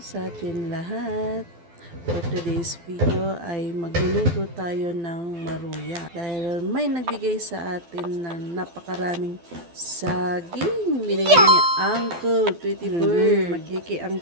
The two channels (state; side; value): late; left; 12 ms